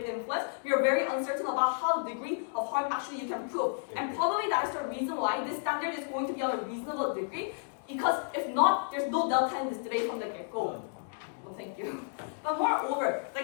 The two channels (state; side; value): silent; right; digital silence